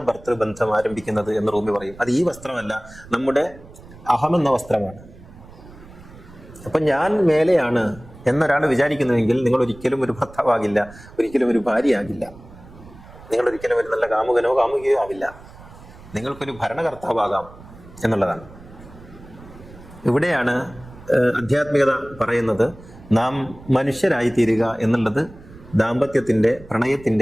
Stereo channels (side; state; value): right; noise; rumble, 20 dB below the sound